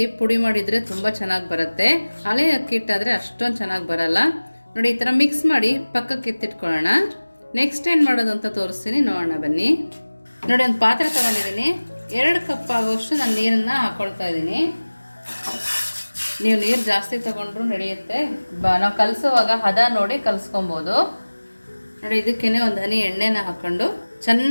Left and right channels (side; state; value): both; inverted; correlation -1.00